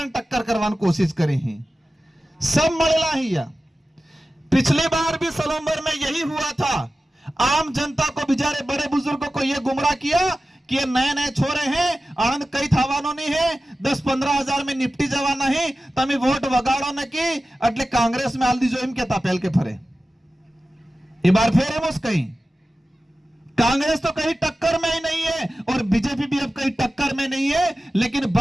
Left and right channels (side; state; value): both; normal; correlation 0.95